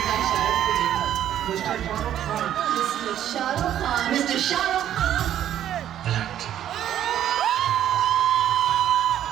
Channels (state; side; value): quieter; left; 11.0 dB